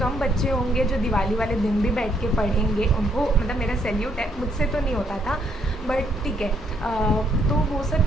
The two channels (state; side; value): normal; both; correlation 0.71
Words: कम बच्चे होंगे जो दिवाली वाले दिन भी बैठ के पढ़ेंगे. उनको मेरा सैल्यूट है, मुझसे तो नहीं होता था, बट ठीक है. तो वो सब